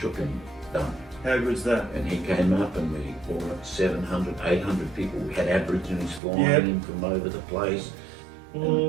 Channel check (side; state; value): left; drops out; at 6.2 s